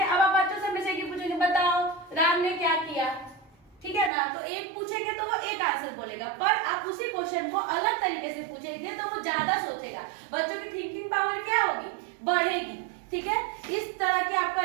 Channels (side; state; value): left; drops out; at 4.1 s